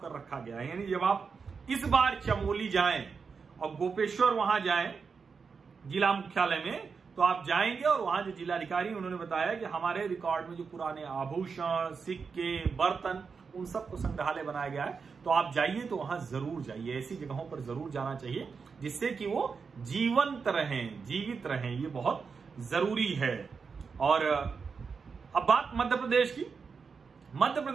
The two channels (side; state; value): left; quieter; 5.4 dB